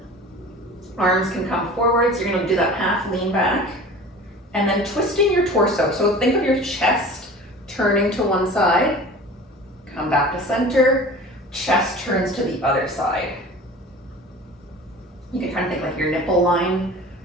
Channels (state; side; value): normal; both; correlation 0.40